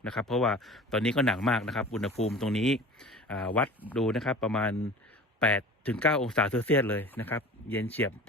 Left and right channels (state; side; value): normal; both; correlation 0.39